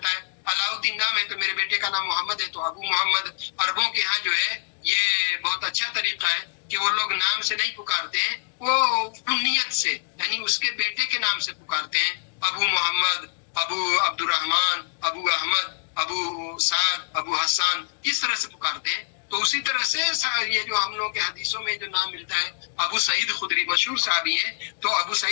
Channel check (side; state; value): right; silent; digital silence